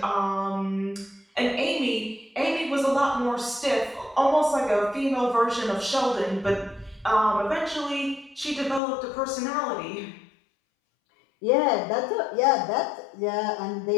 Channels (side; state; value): right; drops out; at 8.8 s